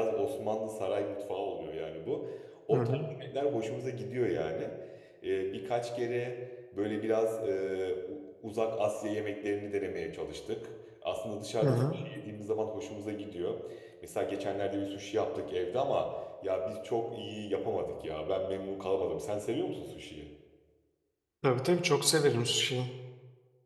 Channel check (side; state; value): both; identical; correlation 1.00